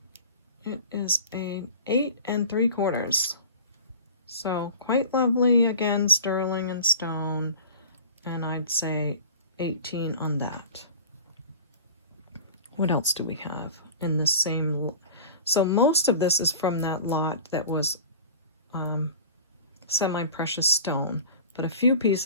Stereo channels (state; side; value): inverted; both; correlation -0.39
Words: It is a 8 3/4. So quite lovely, again, sterling and stone, and I'd say 18 on that. What else do we have in the same? So most of this is from that lot that was semi-precious stone. but a few